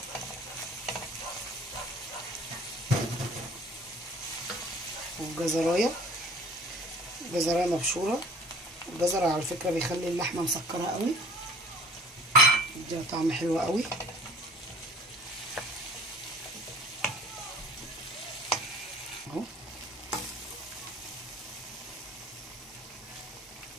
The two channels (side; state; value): both; normal; correlation 0.49